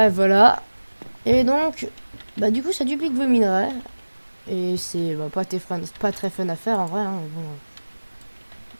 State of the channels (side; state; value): both; inverted; correlation -1.00